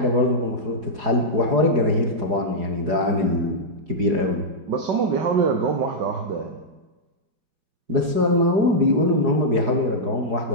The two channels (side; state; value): left; late; 4.8 ms